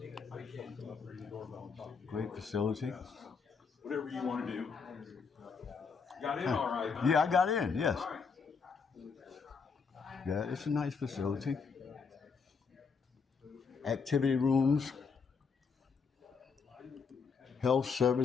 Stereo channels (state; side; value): quieter; right; 5.4 dB